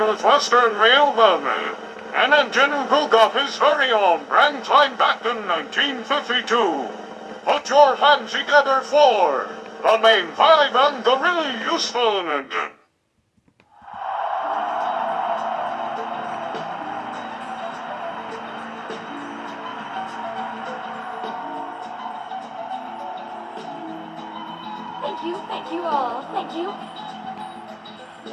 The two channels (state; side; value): identical; both; correlation 1.00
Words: Railway. An engine who broke off his very own brand line back in 1952. Put your hands together for the main five and the really useful engine. Thank you all, thank you.